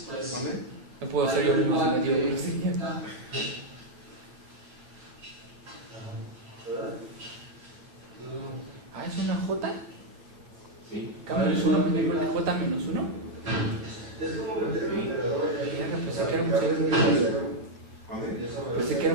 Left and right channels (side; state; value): left; late; 8.7 ms